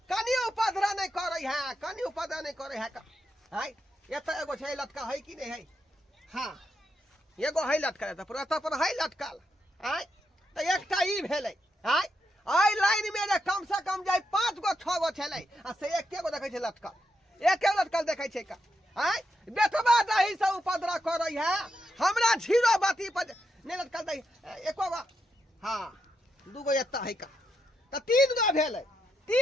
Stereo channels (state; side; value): normal; both; correlation 0.82